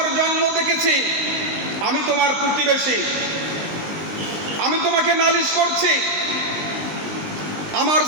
জন্ম দেখেছি, আমি তোমার প্রতিবেশী, আমি তোমাকে নালিশ করছি। আমার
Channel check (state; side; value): late; left; 20 ms